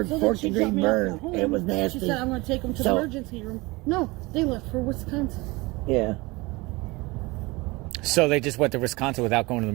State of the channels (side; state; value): left; quieter; 23.2 dB